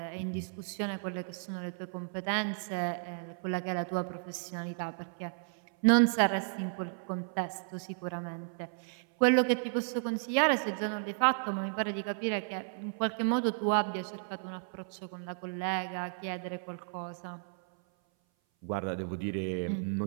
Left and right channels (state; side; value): silent; left; 55 dB below the other